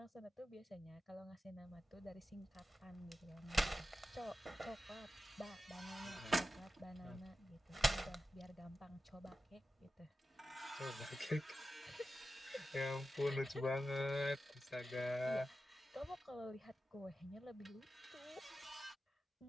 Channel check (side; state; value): both; normal; correlation 0.92